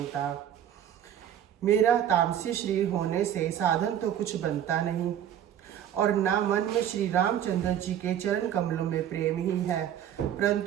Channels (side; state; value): left; quieter; 10.2 dB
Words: मेरा तामसी शरीर होने से साधन तो कुछ बनता नहीं, और ना मन में श्री रामचंद्र जी के चरण कमलों में प्रेम ही है।